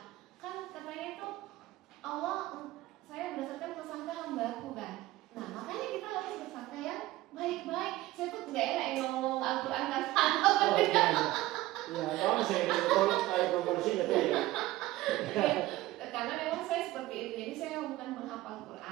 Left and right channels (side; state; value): left; quieter; 17.1 dB